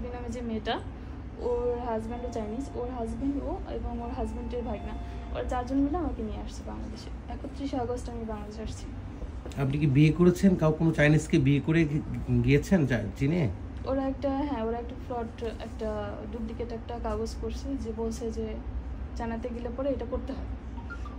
নামে যে মেয়েটা, ওর হাজব্যান্ডও চাইনিজ, ওর হাজব্যান্ড ও এবং ওর হাজব্যান্ডের ভাগনা, ওরা 4 জন মিলে আমাকে নিয়ে আসছে বাংলাদেশে। 31 আগস্ট আমি বাংলাদেশে আসছি। আপনি কি বিয়ে করেছেন? কোনো চাইনিজকে বিয়ে করে গিয়েছেন চীনে? ওরা একটা ফ্রড, একটা ডুপ্লিকেট একটা কাগজ করছে, যে বলছে যে চায়নাতে গেলে পরে এটা করতে হয়,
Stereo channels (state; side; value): identical; both; correlation 1.00